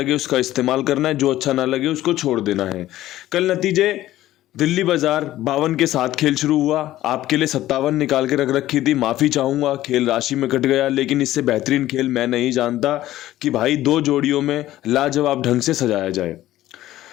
उसका इस्तेमाल करना है, जो अच्छा ना लगे उसको छोड़ देना है। कल नतीजे दिल्ली बाजार 52 के साथ खेल शुरू हुआ। आपके लिए 57 निकाल के रख रखी थी, माफ़ी चाहूँगा, खेल राशि में कट गया। लेकिन इससे बेहतरीन खेल मैं नहीं जानता कि भाई दो जोड़ियों में लाजवाब ढंग से सजाया जाए।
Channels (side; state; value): right; quieter; 14.6 dB